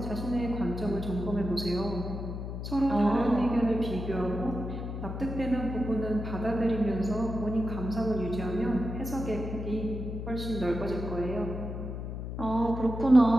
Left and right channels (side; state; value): left; noise; hum, 6 dB below the sound